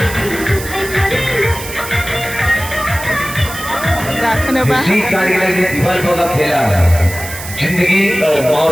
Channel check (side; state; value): right; noise; hiss, 11 dB below the sound